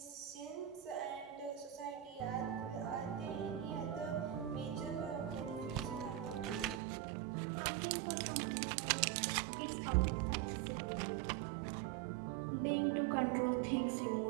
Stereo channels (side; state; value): left; drops out; at 6.8 s